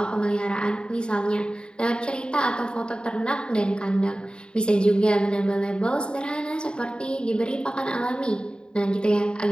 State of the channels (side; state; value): right; late; 0.050 ms